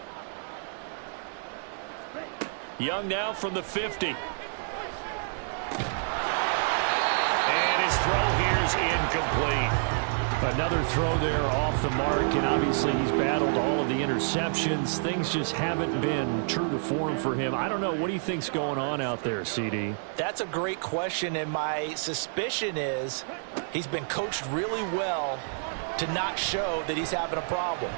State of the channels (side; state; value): left; silent; digital silence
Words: Young now from the 50. And his throw here's incomplete. Another throw there off the mark, and obviously he's battled all of the interceptions. Things just haven't been true to form for him. I don't know. What do you think's going on out there, CD? That's a great question, and my suspicion is he's been coached really well to not show that he's having a problem.